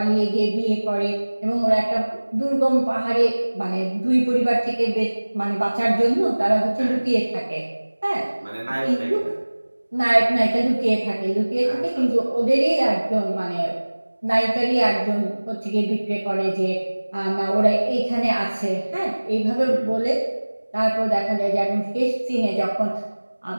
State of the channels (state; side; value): inverted; both; correlation -1.00